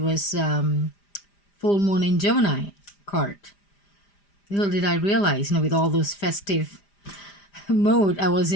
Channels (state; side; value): late; right; 5.0 ms